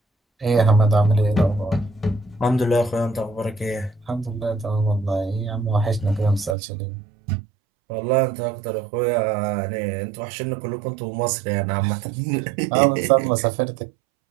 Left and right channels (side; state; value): left; drops out; at 6.6 s